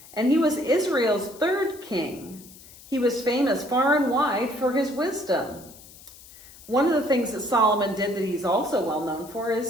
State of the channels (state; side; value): noise; left; hiss, 20 dB below the sound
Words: And he was Israel's third king. He was famous far and wide for his wisdom. One of the things that Solomon did that he's also well known for